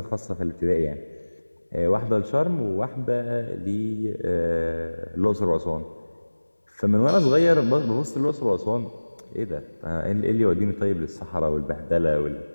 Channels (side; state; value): both; inverted; correlation -1.00